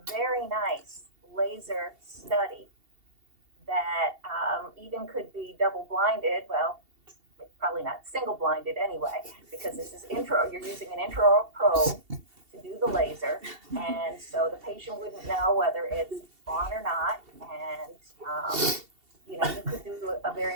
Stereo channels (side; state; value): left; late; 2.7 ms